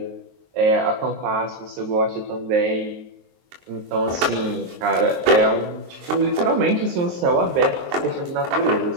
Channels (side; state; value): left; late; 23 ms